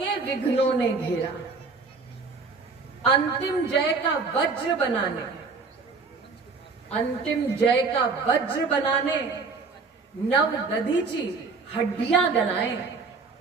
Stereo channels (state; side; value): quieter; left; 4.4 dB